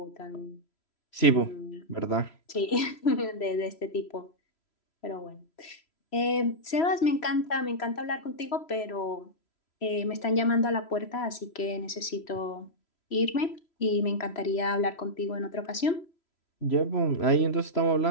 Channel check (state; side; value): late; right; 3.0 ms